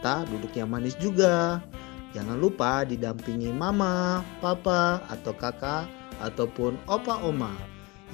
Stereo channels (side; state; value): right; quieter; 25.6 dB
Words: duduk yang manis juga. Jangan lupa didampingi mama, papa, atau kakak, ataupun opa oma.